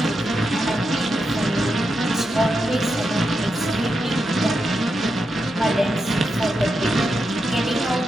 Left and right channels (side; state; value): both; normal; correlation 0.86